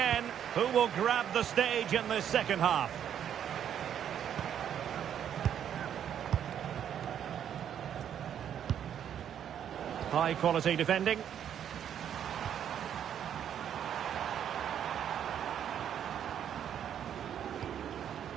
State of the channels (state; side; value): quieter; left; 9.4 dB